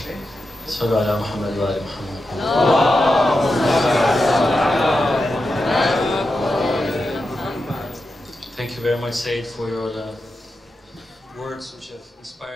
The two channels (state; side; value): normal; both; correlation 0.89